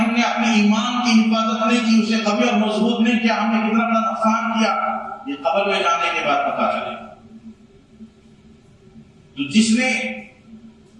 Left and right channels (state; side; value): identical; both; correlation 1.00